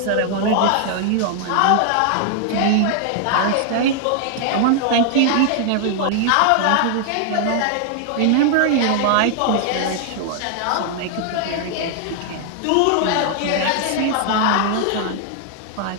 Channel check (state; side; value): different; both; correlation 0.00